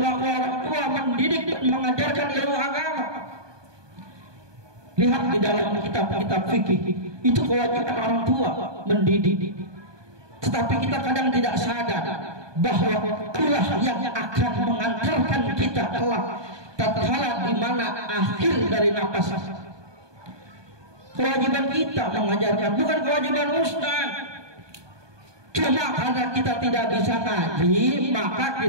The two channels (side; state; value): left; late; 1.2 ms